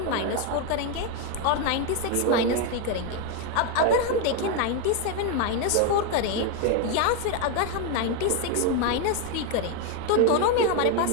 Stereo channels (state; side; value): different; both; correlation 0.01